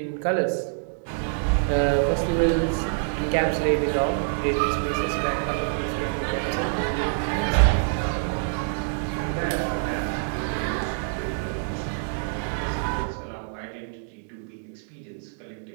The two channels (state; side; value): silent; left; digital silence